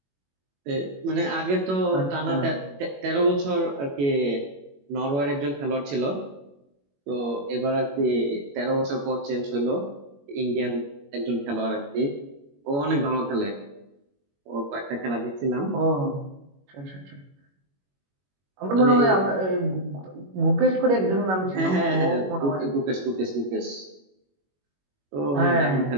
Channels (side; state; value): left; late; 21 ms